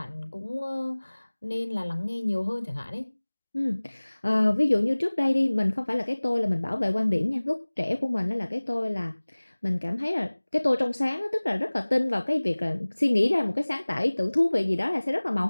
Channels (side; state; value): both; inverted; correlation -1.00